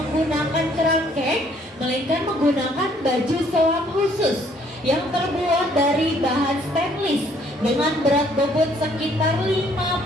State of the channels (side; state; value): both; normal; correlation 0.63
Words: kerangkeng, melainkan menggunakan baju selam khusus yang terbuat dari bahan stainless dengan berat bobot sekitar